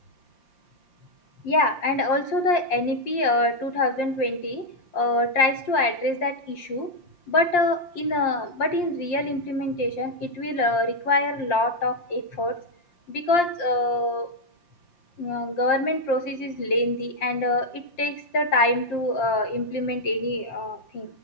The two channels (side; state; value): right; late; 5.7 ms